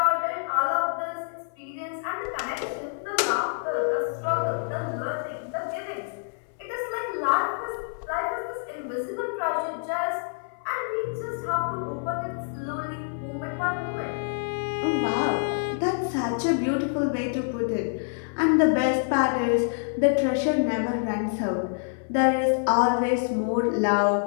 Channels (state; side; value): silent; right; 60 dB below the other